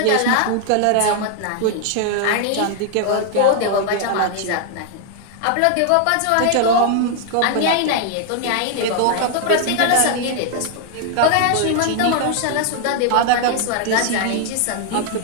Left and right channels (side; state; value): both; different; correlation 0.00